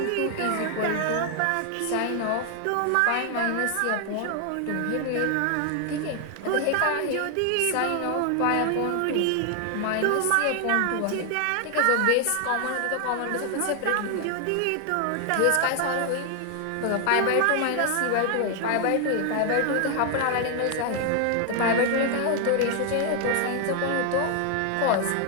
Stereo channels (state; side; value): different; both; correlation 0.00